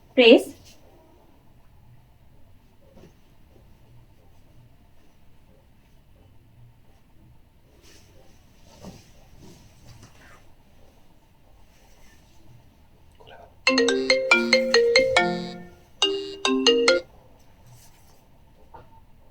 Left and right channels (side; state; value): both; identical; correlation 1.00